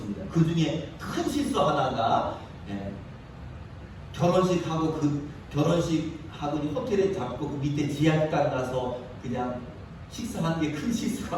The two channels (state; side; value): identical; both; correlation 1.00